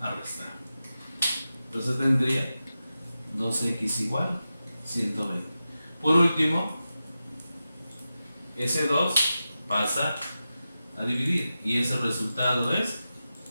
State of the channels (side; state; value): both; inverted; correlation -0.92